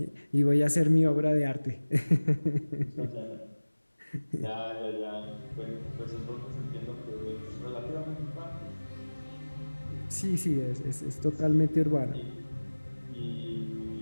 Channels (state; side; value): inverted; both; correlation -1.00